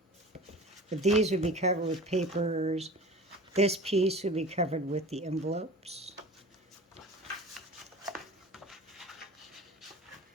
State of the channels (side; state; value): both; normal; correlation 0.38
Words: But these would be covered with papers. This piece would be covered with the envelopes.